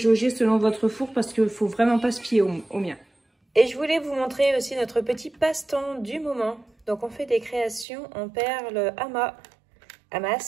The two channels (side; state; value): left; drops out; at 7.9 s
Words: selon votre four parce qu'il ne faut vraiment pas se fier au mien. Et je voulais vous montrer aussi notre petit passe-temps du moment. Donc, on fait des créations en perles